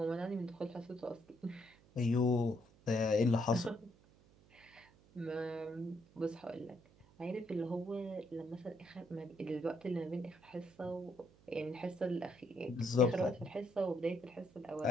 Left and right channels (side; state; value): right; noise; hum, 27 dB below the sound